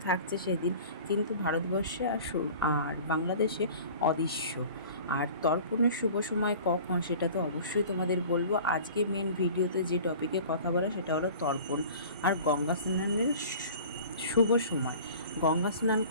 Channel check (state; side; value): inverted; both; correlation -0.43